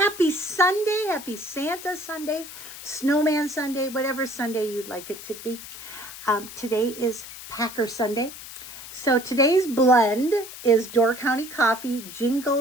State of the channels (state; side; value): noise; left; hiss, 13 dB below the sound